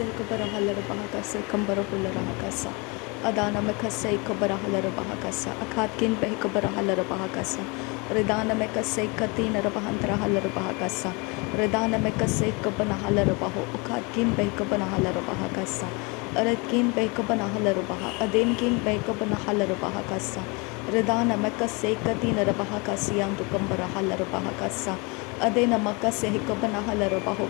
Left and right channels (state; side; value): quieter; right; 29.0 dB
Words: Kabarahala Bahakasa Kambarahulla Rahakasa Adana Mekase Kabarahala Bahakasa Akatkin Behikabarahala Bahakasa Redana Mekase Katina Rabahantra Hala Bahakasa Redana Mekase Kabanahala Baho Ukatkin Behikabanahala Bahakasa Aratkin Behikabanahala Baha Adinkin Behikabanahala Bahakasa Redana Mekase Katina Rabahakasian to Kambarahala Bahakasa Adena Makase Hikabanahala